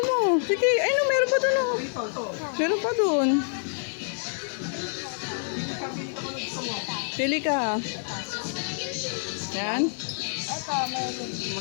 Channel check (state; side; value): silent; right; digital silence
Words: mo? Sige, ay no, meron pa dun o. Meron pa dun. Pili ka. Yan? Ito, may